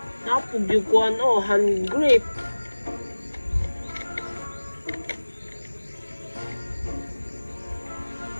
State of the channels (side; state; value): both; inverted; correlation -1.00